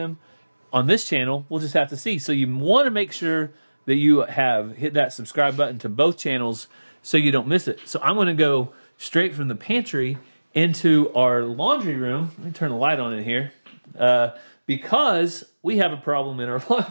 on this channel. We'll just have to see. So you want to make sure that you have hit that subscribe button to both channels so you don't miss it. So I'm going to go straight from the pantry into our laundry room. Let me turn the light on in here because we have a problem in our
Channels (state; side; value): inverted; both; correlation -1.00